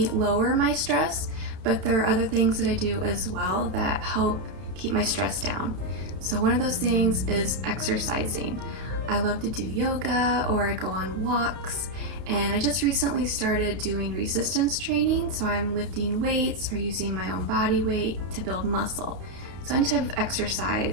lower my stress, but there are other things that I do as well that help keep my stress down. So one of those things is exercising. I love to do yoga, or I go on walks, and I just recently started doing resistance training, so I'm lifting weights or using my own body weight to build muscle. So any type of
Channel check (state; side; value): late; left; 31 ms